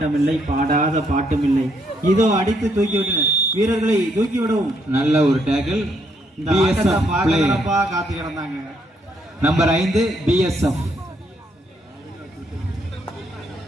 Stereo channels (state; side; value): normal; both; correlation 0.73